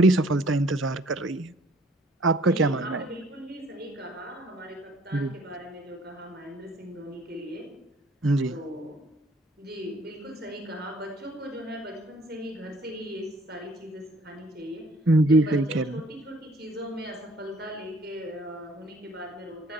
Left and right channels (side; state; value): both; normal; correlation 0.58